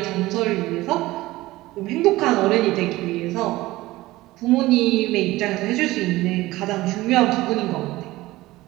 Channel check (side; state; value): left; quieter; 18.2 dB